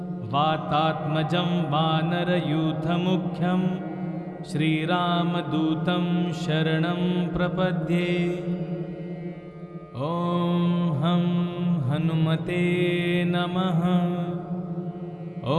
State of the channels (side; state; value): both; identical; correlation 1.00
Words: वातात्मजं वानरयूथमुख्यं श्रीरामदूतं शरणं प्रपद्ये। ॐ हं हनुमते नमः।